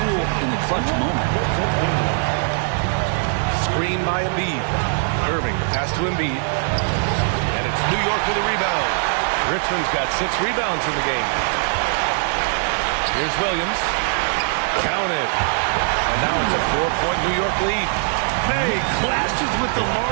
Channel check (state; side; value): silent; left; 55 dB below the other